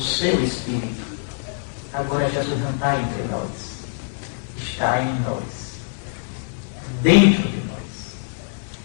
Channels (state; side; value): silent; right; digital silence